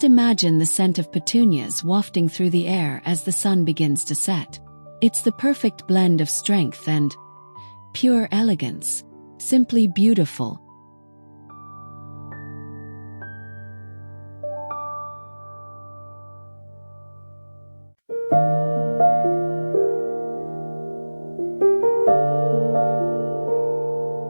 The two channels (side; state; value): both; inverted; correlation -1.00